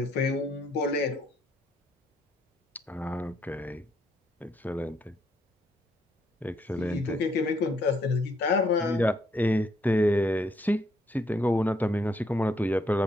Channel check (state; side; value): normal; both; correlation 0.72